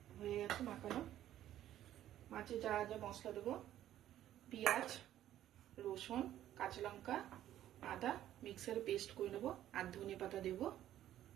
হয়ে গেছে মাখানো। মাছে যা যা মশলা দেবো, পেঁয়াজ, রসুন, কাঁচা লঙ্কা, আদা মিক্সারে পেস্ট করে নেবো, আর ধনে পাতা দেবো।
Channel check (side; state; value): left; quieter; 12.4 dB